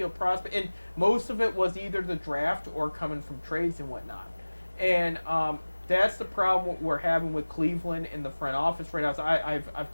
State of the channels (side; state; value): both; inverted; correlation -1.00